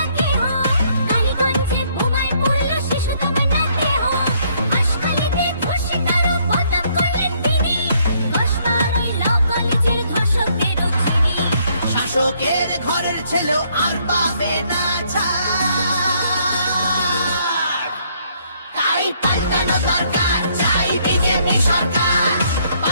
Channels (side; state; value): both; inverted; correlation -0.68